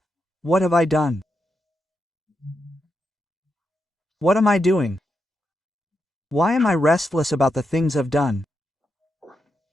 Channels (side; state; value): both; normal; correlation 0.85